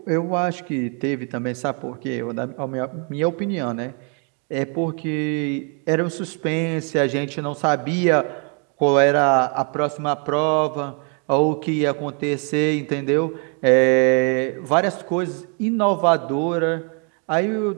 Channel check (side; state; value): left; quieter; 38.4 dB